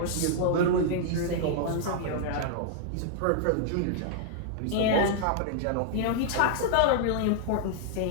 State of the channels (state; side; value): different; both; correlation -0.01